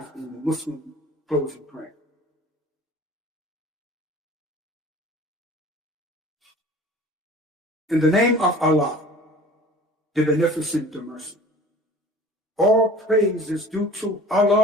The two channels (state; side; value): normal; both; correlation 0.44